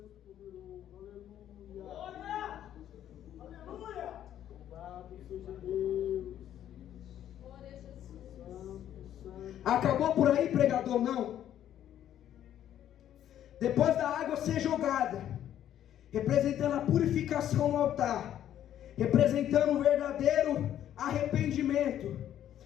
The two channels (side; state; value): right; quieter; 11.0 dB